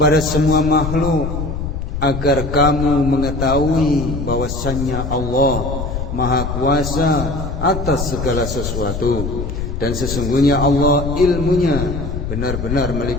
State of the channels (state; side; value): noise; left; rumble, 5 dB below the sound